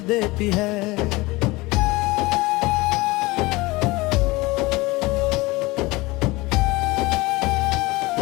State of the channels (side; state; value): right; quieter; 21.9 dB